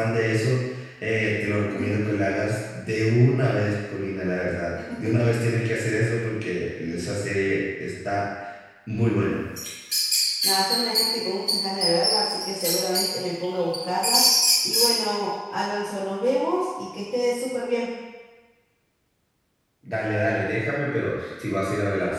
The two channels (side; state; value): both; identical; correlation 1.00